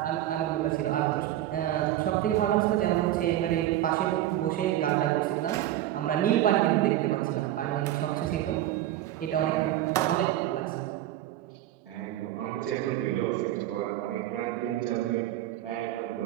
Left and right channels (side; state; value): left; quieter; 13.5 dB